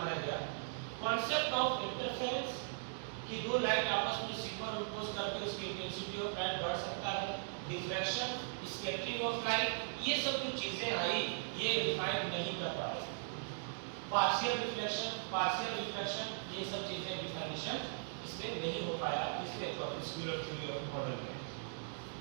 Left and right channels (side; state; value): left; silent; digital silence